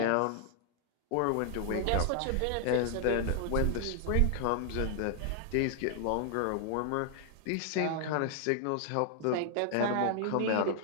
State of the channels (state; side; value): different; both; correlation 0.00